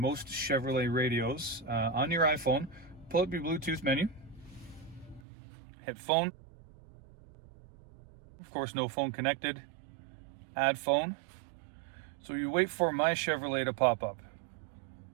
Chevrolet radios on your iPhone, pull up your Bluetooth menu, hit phone. Of course, no phone connected. Add phone. So you wait for My Chevrolet to pop up.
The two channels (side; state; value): left; drops out; at 5.2 s